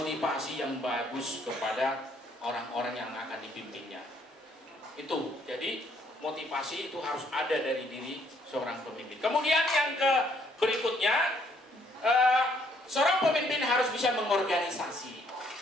yang bagus kepada orang-orang yang akan dipimpinnya. Itu, jadi motivasi itu harus ada dari diri seorang pemimpin. Kemudian yang berikutnya, seorang pemimpin harus bisa mengorganisasi.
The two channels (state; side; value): normal; both; correlation 0.67